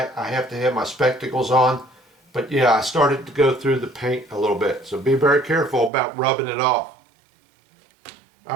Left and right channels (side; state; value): left; drops out; at 5.9 s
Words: I have to have my spectacles on. But yeah, I started to go through the paint a little bit. So be very careful about rubbing it off.